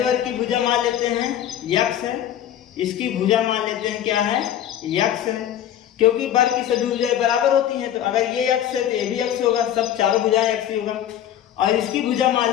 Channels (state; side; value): quieter; right; 10.9 dB